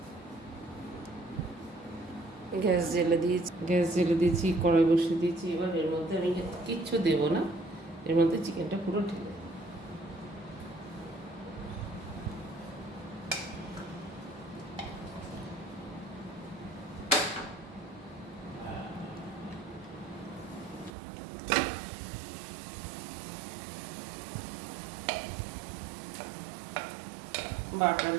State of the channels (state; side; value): drops out; left; at 20.9 s